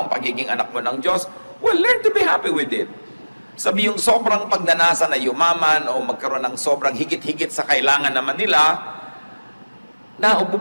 ang pagiging anak mo ng Diyos, well, learn to be happy with it. Sabi yung sobrang pagnanasa na yumaman o magkaroon ng sobrang higit-higit sa kailangan naman nila,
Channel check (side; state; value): both; inverted; correlation -1.00